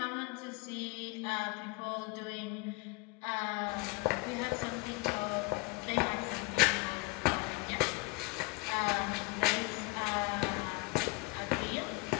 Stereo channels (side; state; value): right; quieter; 24.8 dB